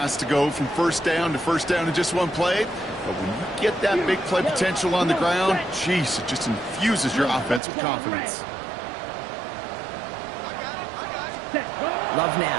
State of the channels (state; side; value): drops out; left; at 7.6 s